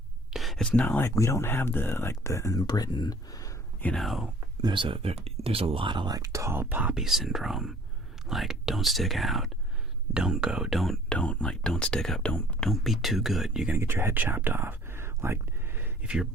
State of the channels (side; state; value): both; normal; correlation 0.54